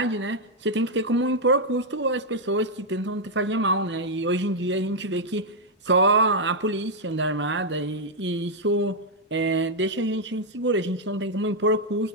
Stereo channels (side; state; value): both; normal; correlation -0.02